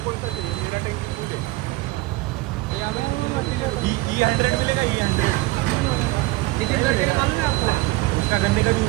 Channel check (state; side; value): quieter; left; 20.5 dB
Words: कौन सा चाहिए? मेरा टैंकी फुल है. E100 मिलेगा. E100 नितिन गडकरी मालूम है आपको? उसका गन्ने का